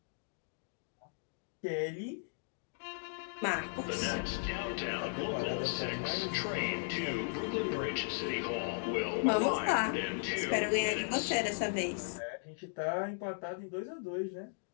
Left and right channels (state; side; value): silent; right; digital silence